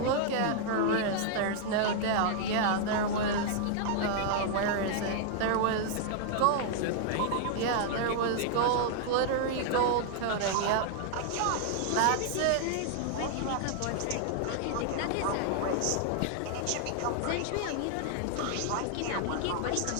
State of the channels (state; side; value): different; both; correlation 0.00